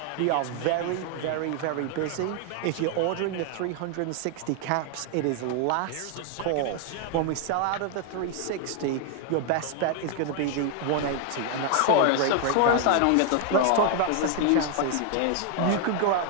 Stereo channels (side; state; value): both; different; correlation 0.00